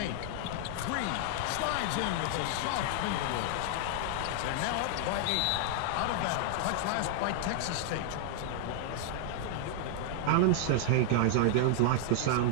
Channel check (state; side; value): different; both; correlation -0.01